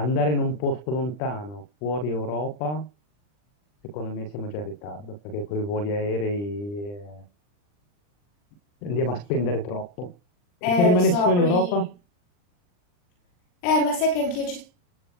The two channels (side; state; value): right; late; 40 ms